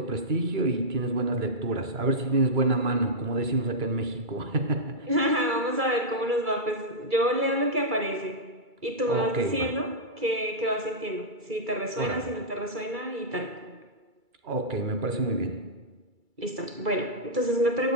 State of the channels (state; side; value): late; left; 2.3 ms